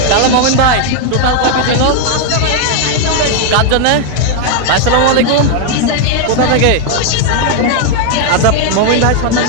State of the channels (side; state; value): both; different; correlation 0.00